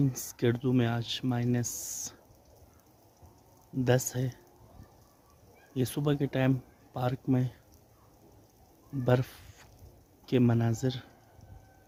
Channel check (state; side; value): identical; both; correlation 1.00